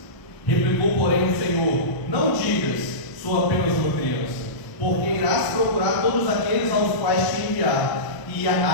Replicou, porém, o Senhor: não digas, sou apenas uma criança, porque irás procurar todos aqueles aos quais te enviar, e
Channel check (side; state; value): right; late; 1.0 ms